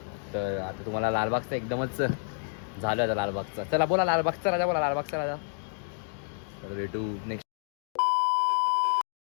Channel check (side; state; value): right; silent; digital silence